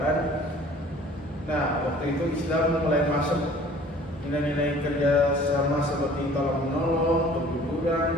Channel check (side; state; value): both; normal; correlation 0.50